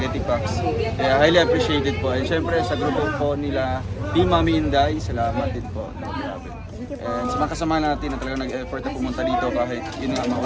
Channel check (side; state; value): both; identical; correlation 1.00